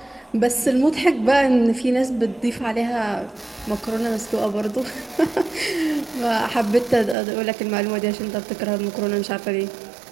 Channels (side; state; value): left; drops out; at 7.2 s